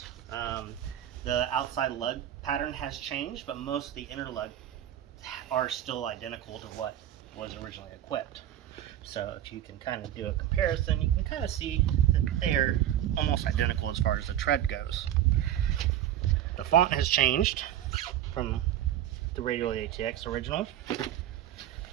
The outside lug pattern has changed, but most of the inner lug are still identical to what was originally equipped. So if you can kind of do a comparison, you can kind of see that they are almost identical as far as the tread goes. The font has changed from the Radial ATX original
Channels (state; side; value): quieter; left; 11.7 dB